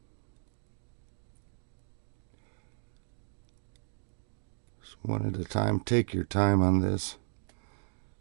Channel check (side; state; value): left; silent; 55 dB below the other